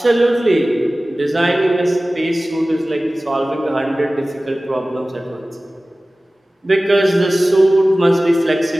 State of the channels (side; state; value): both; normal; correlation 0.97